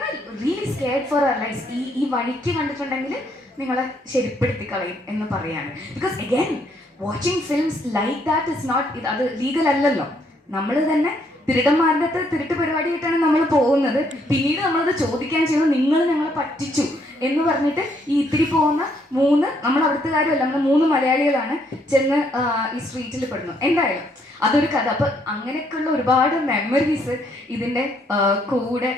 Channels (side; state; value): both; normal; correlation 0.71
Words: really scared for our life. ഈ വഴിക്ക് കണ്ടിട്ടുണ്ടെങ്കിൽ നിങ്ങളെ ശരിപ്പെടുത്തി കളയും എന്ന് പറയാണ്. Because again watching films like that is not, അത് ലീഗൽ അല്ലല്ലോ. നമ്മൾ തന്നെ തിരുടന്മാരുടെ അടുത്ത് തിരുട്ട് പരിപാടിയായിട്ടാണ് നമ്മൾ പോകുന്നത്. പിന്നീട് നമ്മളത് ചോദിക്കാൻ ചെയ്യുന്നത് നിങ്ങൾ ഞങ്ങളെ പറ്റിച്ചു എന്ന് പറഞ്ഞിട്ട് ഈ ഇത്തിരി പോകുന്ന 3 നമ്മൾ അവിടുത്തുകാരുമല്ല, നമ്മൾ 3 മലയാളികളാണ് ചെന്ന് ഈ സ്ട്രീറ്റിൽ പെടുന്നു. എന്തായാലും അതൊരു കഥ. അപ്പം അങ്ങനെയൊക്കെയുള്ള ഒരുപാട് മെമ്മറീസ് ഇതിൻ്റെ കൂടെ